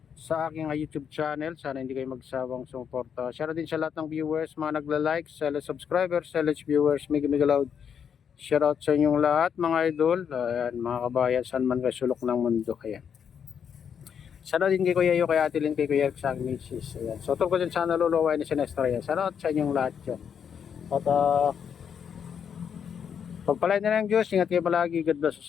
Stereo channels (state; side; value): quieter; right; 7.6 dB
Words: sa aking YouTube channel. Sana hindi kayo magsawang sumuporta. Shoutout din sa lahat ng viewers, mga nagla-like, sa subscribers, sa viewers, mega loud. Shoutout sa inyong lahat mga idol. Ayan, mga kabayan, saan man kayo sulok ng mundo. Ayan. Shoutout din kay Kuya Yo, kay Ate Lynn, kay Kuya Eric sa aking misis. Ayan. So, tungkol din sa naluluwa ni Sinestra. Shoutout sa inyong lahat dyan. At pagpalain na ng Diyos, ingat kayo palagi. God bless